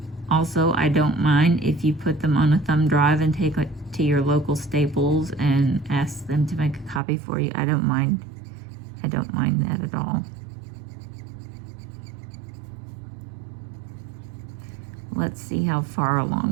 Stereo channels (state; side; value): drops out; left; at 7.0 s